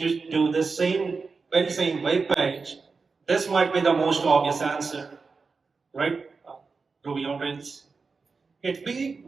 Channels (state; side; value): quieter; left; 4.6 dB